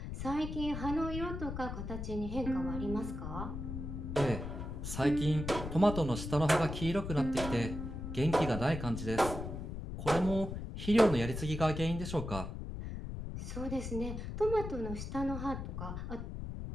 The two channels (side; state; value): left; noise; rumble, 6 dB below the sound